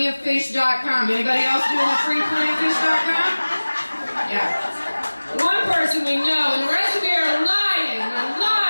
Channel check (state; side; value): inverted; both; correlation -1.00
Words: Anybody else doing the free plentyoffish.com? Yeah. One person we know, and the rest of you are lying. You're